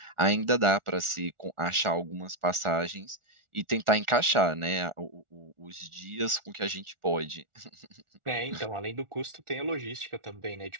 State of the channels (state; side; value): late; left; 1.4 ms